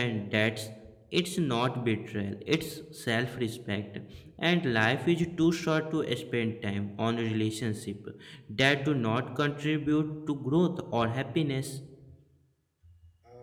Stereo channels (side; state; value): both; identical; correlation 1.00